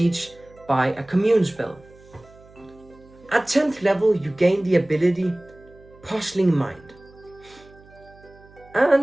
by a commune spell. At 10th level, you gain the ability Puzzling Mind.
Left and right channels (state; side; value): noise; right; hum, 25 dB below the sound